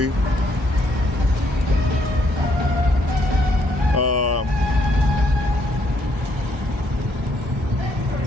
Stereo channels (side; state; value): both; normal; correlation 0.71